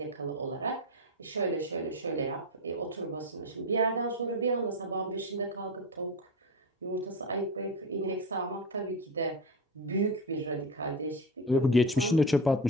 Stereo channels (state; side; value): normal; both; correlation 0.20